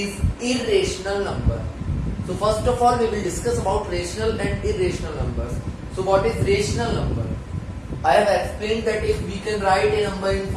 irrational number. So first of all, we will discuss about rational and irrational numbers. So what is rational number? I have explained that if we can write a number in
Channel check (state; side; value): identical; both; correlation 1.00